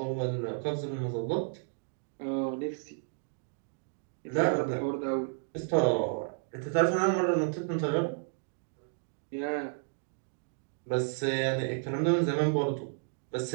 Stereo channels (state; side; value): silent; left; digital silence